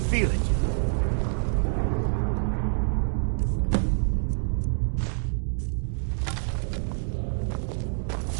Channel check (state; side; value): silent; left; 60 dB below the other